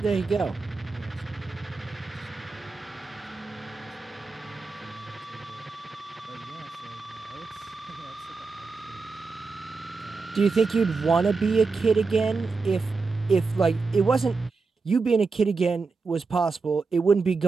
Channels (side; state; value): left; quieter; 4.3 dB